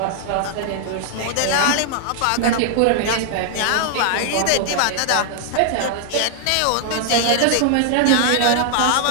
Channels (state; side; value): different; both; correlation 0.00